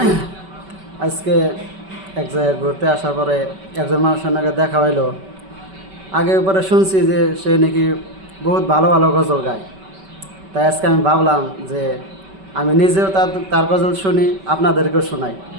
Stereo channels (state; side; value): late; left; 5.2 ms